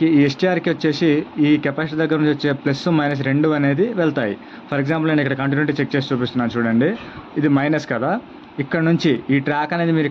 ఈ ఎస్టీఆర్కి వచ్చేసి ఈ కెపాసిటీ దగ్గర నుంచి వచ్చే ప్లస్ మైనస్ 2 అనేది వెళ్తాయి. ఫర్ ఎగ్జాంపుల్ నేను ఇక్కడ కంటిన్యూటీ చెక్ చేసి చూపిస్తున్నాను చూడండి, ఇది మైనస్ కదా. ఇక్కడ నుంచి ఈ ట్రాక్ అనేది మీరు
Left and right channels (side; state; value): both; identical; correlation 1.00